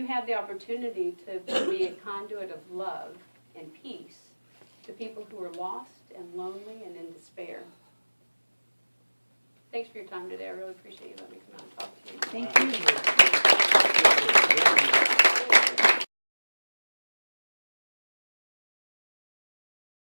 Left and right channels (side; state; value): both; inverted; correlation -1.00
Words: have the opportunity to be a conduit of love and peace to people who are lost and lonely and in despair. Thanks for your time today. I really appreciate you letting me come out and talk to you. Thank you.